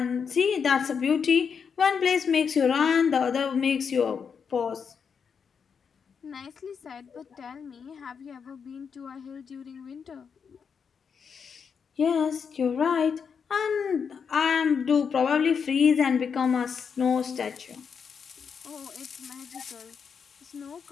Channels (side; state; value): right; quieter; 6.4 dB